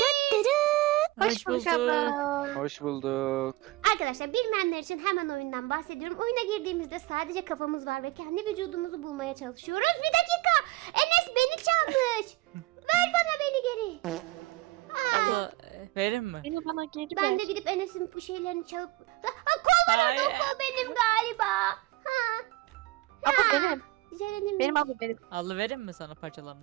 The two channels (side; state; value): left; quieter; 19.0 dB